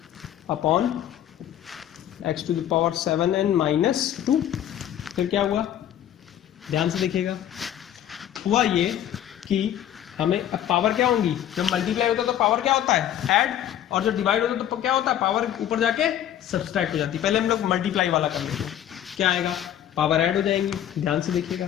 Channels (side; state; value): right; quieter; 11.0 dB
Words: upon x to the power 7n - 2, फिर क्या हुआ ध्यान से देखिएगा, हुआ ये कि हमें अब पावर क्या होंगी, जब मल्टीप्लाई होता है तो पावर क्या होता है ऐड, और जब डिवाइड होता है तो क्या होता है पावर ऊपर जाके सब्सट्रैक्ट हो जाती है। पहले हम लोग मल्टीप्लाई वाला कर लेते हैं, क्या आएगा पावर ऐड हो जाएंगी, ध्यान से देखिएगा